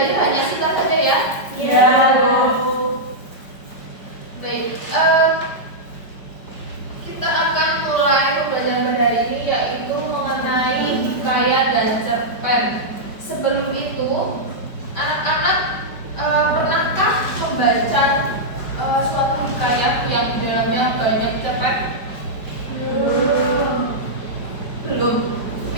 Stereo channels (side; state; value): right; late; 5.1 ms